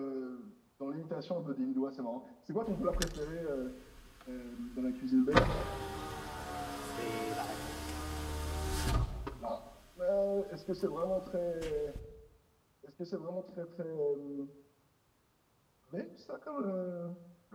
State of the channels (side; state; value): both; identical; correlation 1.00